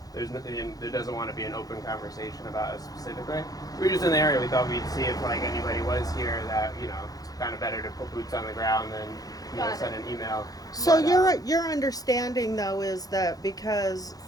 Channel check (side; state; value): right; late; 0.18 ms